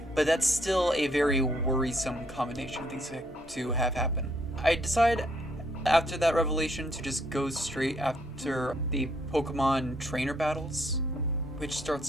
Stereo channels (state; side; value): normal; both; correlation 0.70